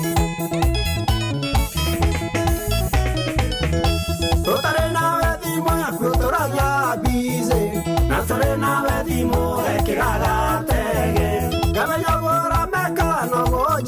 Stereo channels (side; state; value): both; identical; correlation 1.00